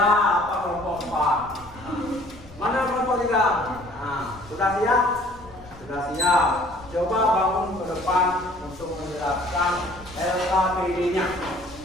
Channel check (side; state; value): left; noise; rumble, 20 dB below the sound